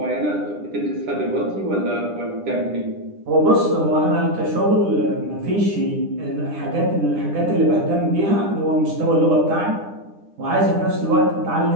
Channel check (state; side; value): late; left; 10 ms